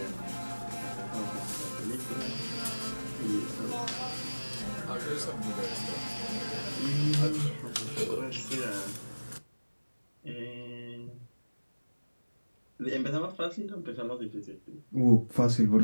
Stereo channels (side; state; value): both; inverted; correlation -1.00